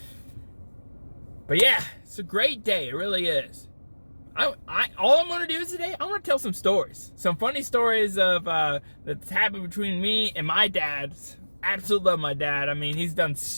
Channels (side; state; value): both; inverted; correlation -1.00